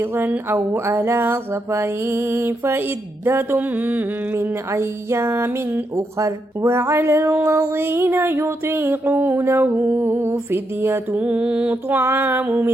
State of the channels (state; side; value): normal; both; correlation 0.81